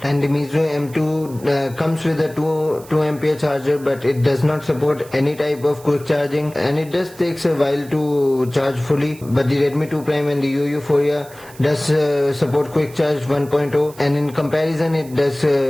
And the Meizu M2 comes with a 2 ampere charger, but it does not support any type of quick charging, and it does takes a while to charge fully. But the Redmi 2 Prime and the Euphoria does support quick charge 1.0, and in comparison it does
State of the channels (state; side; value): noise; right; hiss, 22 dB below the sound